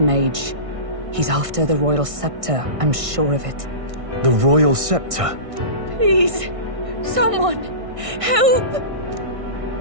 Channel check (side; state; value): left; late; 1.6 ms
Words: He's after the royal scepter, I'm sure of it. The royal scepter? Please, someone, help!